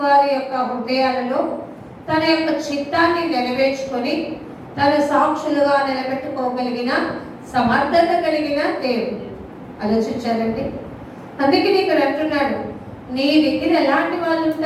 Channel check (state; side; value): identical; both; correlation 1.00